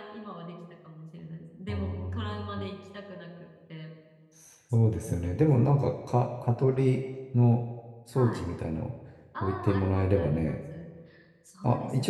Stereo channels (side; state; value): both; identical; correlation 1.00